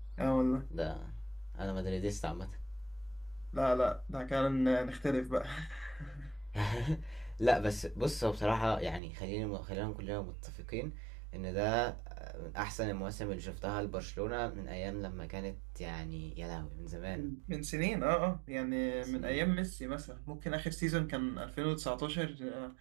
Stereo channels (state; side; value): drops out; left; at 9.0 s